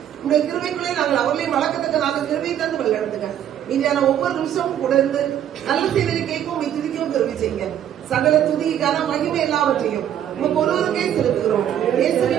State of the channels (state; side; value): quieter; left; 10.4 dB